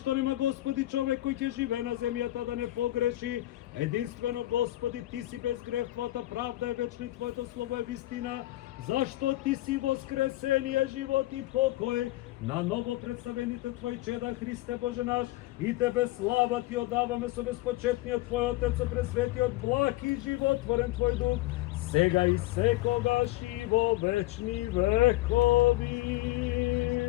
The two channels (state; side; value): quieter; right; 17.5 dB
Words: нема, Господи, човек кој ќе живее на земјата да не погреши? Единствено, Господи, Ти си без грев, Твојата правда е вечна и Твоето слово е вистина. Зашто Ти си воскресение, живот и покој на ново представените Твои чеда, Христе Боже наш, и Тебе слава Ти одаваме со безпочетниот Твој Отец, со пресветиот благ и животворен Твој Дух, сега и секогаш и во вечни векови.